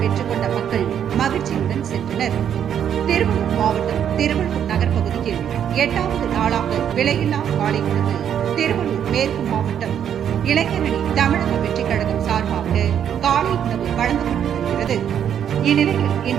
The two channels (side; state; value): left; quieter; 9.1 dB